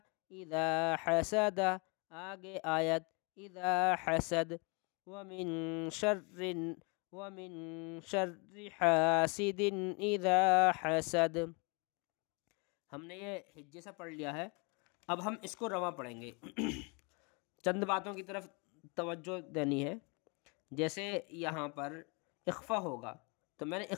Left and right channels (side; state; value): right; quieter; 31.8 dB